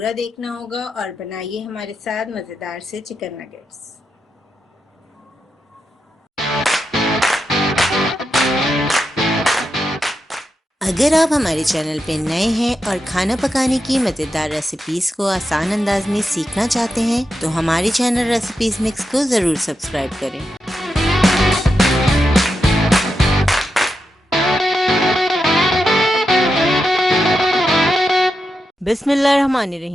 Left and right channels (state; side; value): normal; both; correlation 0.87